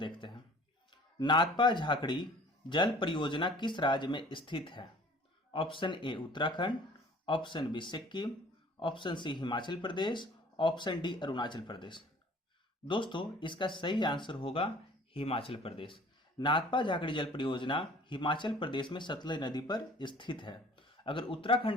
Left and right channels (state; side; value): normal; both; correlation 0.50